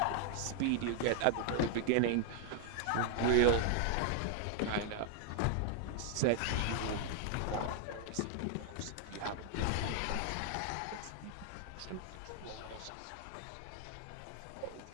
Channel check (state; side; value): different; both; correlation 0.00